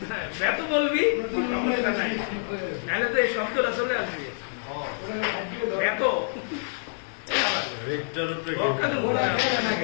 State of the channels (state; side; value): silent; right; 60 dB below the other